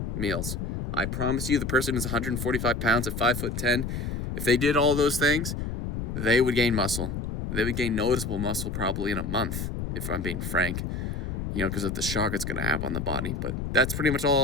meals. I promise you, the person who's 145 pounds at 5'10", if they did all those things, they would gain muscle. They would gain noticeable muscle probably in a month, if I'm being frank, because of the shock it's going to have on the body. But that's pretty much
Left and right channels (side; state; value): left; noise; rumble, 4 dB below the sound